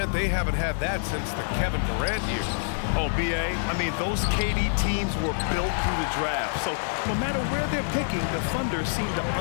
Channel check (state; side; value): silent; right; 57 dB below the other